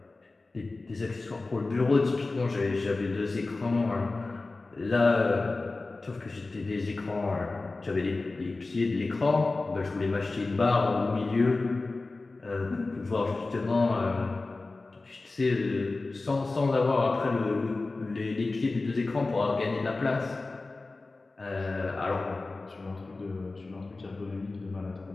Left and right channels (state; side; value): quieter; right; 3.4 dB